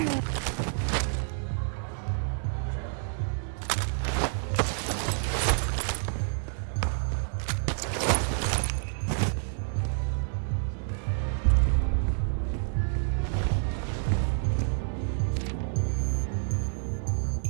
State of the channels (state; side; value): silent; left; 59 dB below the other